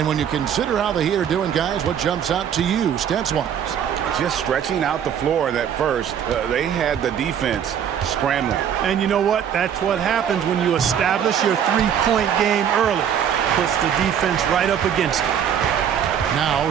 when you consider how the Heat are doing, guys, what jumps out to you, stats-wise? Just stretching out the floor that first. They had the defense scrambling. And you know what? That's what happens when you establish your three-point game early. Puts the defense right up against it. Now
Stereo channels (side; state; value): left; quieter; 8.7 dB